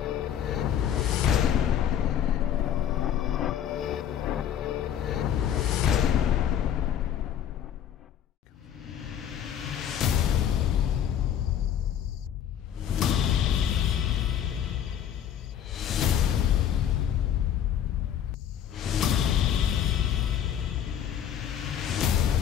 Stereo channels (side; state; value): right; quieter; 9.7 dB